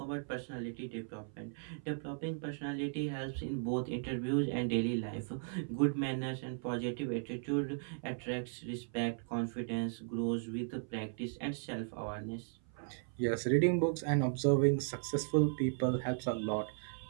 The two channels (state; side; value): silent; left; 53 dB below the other